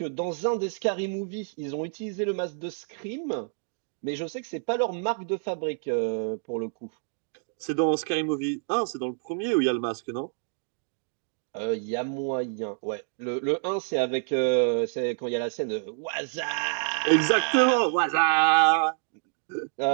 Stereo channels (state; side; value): silent; left; digital silence